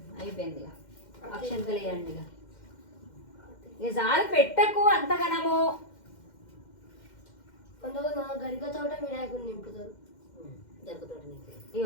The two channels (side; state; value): right; late; 2.1 ms